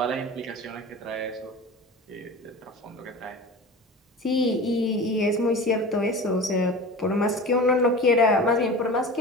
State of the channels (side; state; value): both; normal; correlation 0.34